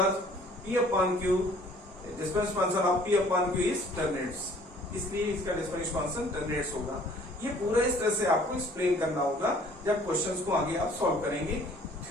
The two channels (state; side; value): normal; both; correlation 0.55